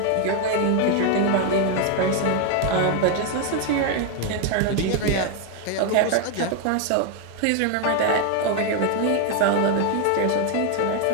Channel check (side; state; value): both; different; correlation 0.01